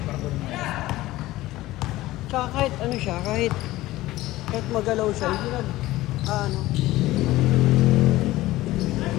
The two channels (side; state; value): right; quieter; 17.1 dB